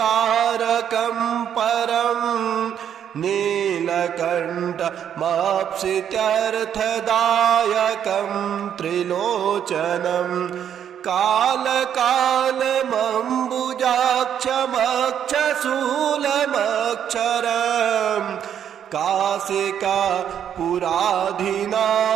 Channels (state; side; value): quieter; left; 9.2 dB